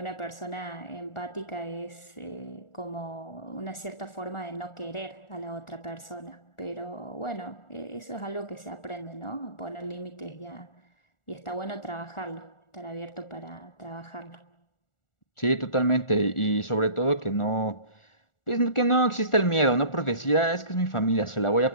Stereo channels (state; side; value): late; right; 1.4 ms